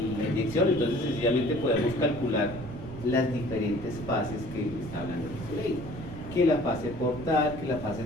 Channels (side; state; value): right; noise; rumble, 12 dB below the sound